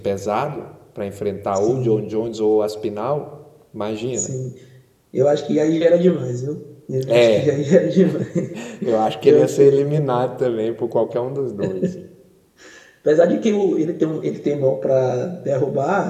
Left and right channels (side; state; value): both; identical; correlation 1.00